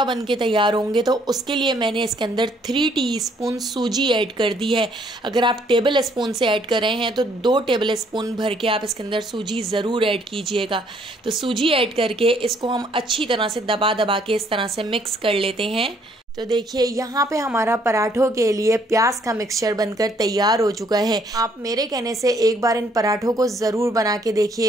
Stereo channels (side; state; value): both; normal; correlation 0.66